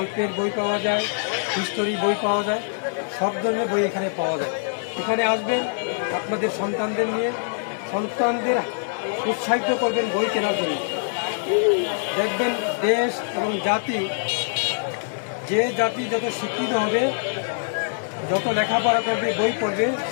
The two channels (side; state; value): right; silent; 59 dB below the other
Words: বই পাওয়া যায়, হিস্টোরি বই পাওয়া যায়, সব ধরনের বই এখানে পাওয়া যায়। এখানে আসবেন আপনাদের সন্তানদের নিয়ে, সন্তানদের উৎসাহিত করবেন বই কেনার জন্য। দেখবেন দেশ এবং জাতি, যে জাতি যত শিক্ষিত হবে, যত লেখাপড়া করবে, বই পড়বে,